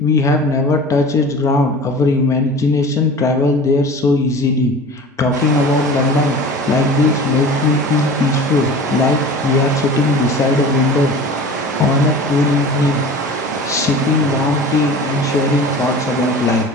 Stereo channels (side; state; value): both; normal; correlation 0.38